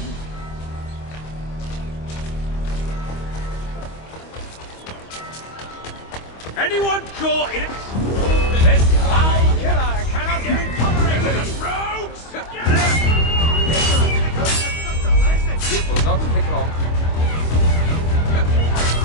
Anyone caught in it? This foul killer cannot be tolerated! Rogues! It will not take long.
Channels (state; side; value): late; right; 25 ms